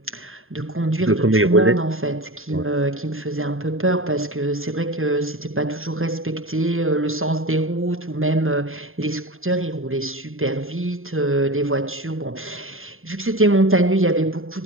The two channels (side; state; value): left; late; 0.60 ms